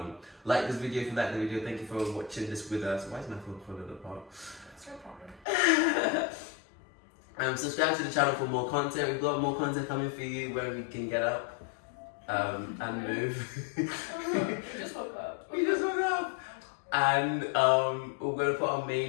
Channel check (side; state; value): right; drops out; at 5.5 s